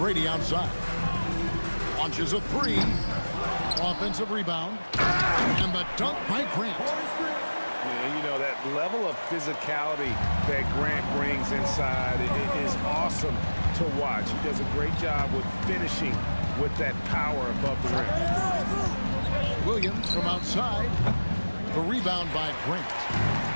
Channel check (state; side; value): inverted; both; correlation -1.00